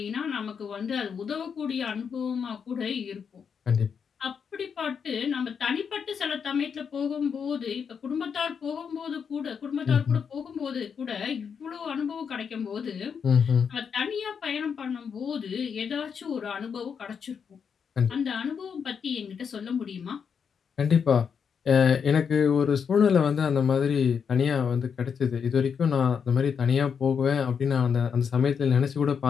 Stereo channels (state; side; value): quieter; right; 6.7 dB